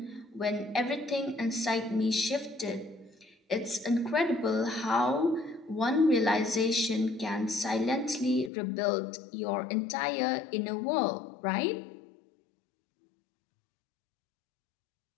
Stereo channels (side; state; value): right; drops out; at 8.5 s